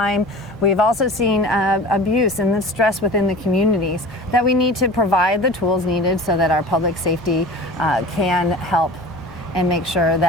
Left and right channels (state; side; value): normal; both; correlation 0.38